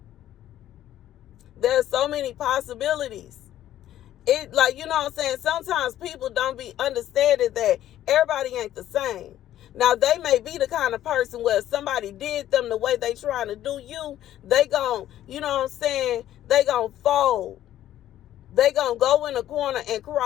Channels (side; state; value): right; quieter; 12.4 dB